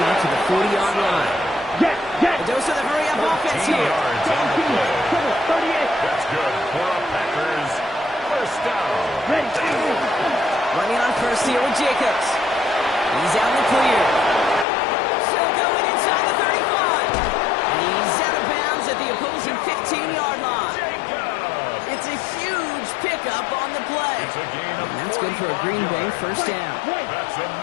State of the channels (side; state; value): right; drops out; at 14.7 s